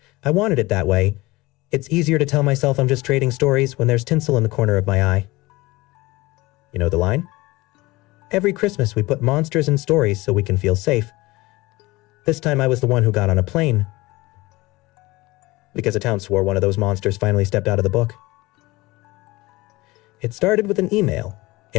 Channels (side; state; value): right; quieter; 21.0 dB